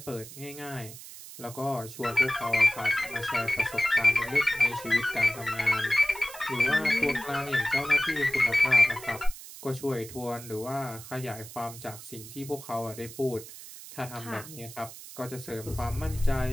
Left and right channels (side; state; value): right; noise; hiss, 14 dB below the sound